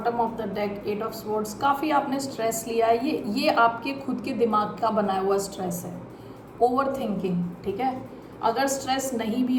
of the deck 8 of swords. काफ़ी आपने stress लिया है, ये आपके खुद के दिमाग का बनाया हुआ स्ट्रेस है, ओवर थिंकिंग, ठीक है। अगर स्ट्रेस नहीं भी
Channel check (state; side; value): identical; both; correlation 1.00